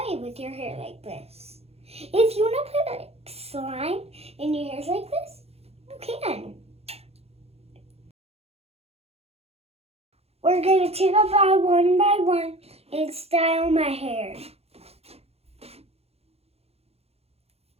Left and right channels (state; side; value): late; left; 0.29 ms